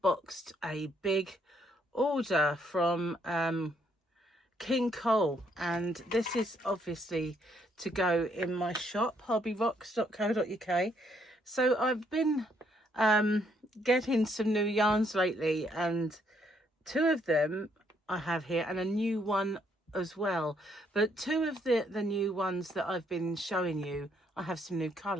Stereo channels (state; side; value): normal; both; correlation 0.71